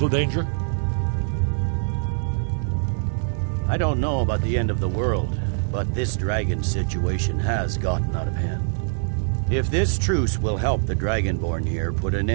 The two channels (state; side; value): silent; left; digital silence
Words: danger? I don't know about the end of the world, but this dragon situation has gotten out of hand. If this truce will help the Dragonborn here put an